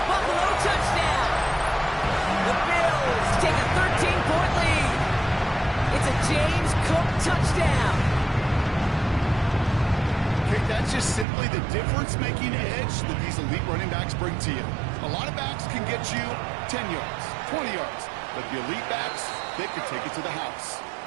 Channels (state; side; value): drops out; left; at 11.2 s